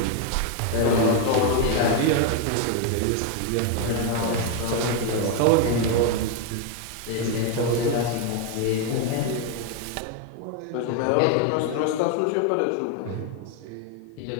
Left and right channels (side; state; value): both; different; correlation 0.01